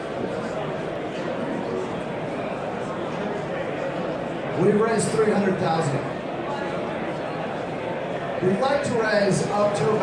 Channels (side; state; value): both; identical; correlation 1.00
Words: We've raised $300,000. We'd like to raise up to